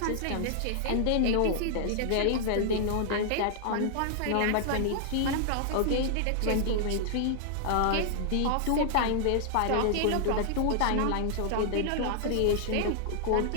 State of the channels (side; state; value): both; different; correlation -0.01